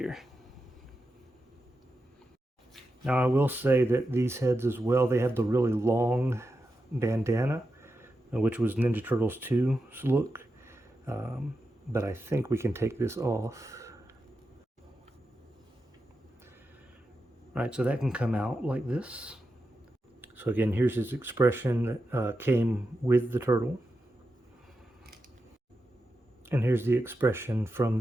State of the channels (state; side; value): normal; both; correlation 0.89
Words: Now I will say that these heads as well, they have the really long bandana, which was Ninja Turtles 2's look. But I think we can take this off. All right, so that can come out like this. So again, here's his expression that came with the turtle. And here's the expression from